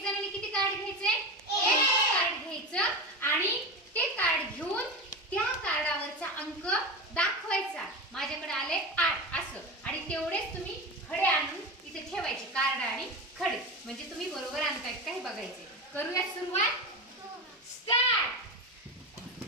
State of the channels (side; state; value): both; normal; correlation 0.23